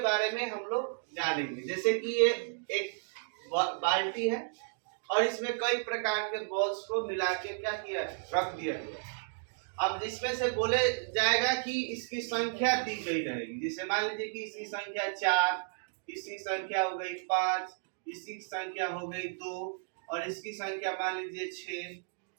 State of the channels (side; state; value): left; silent; digital silence